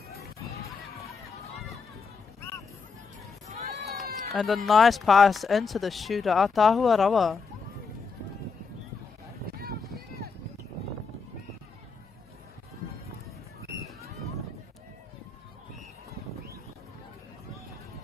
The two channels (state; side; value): quieter; right; 5.1 dB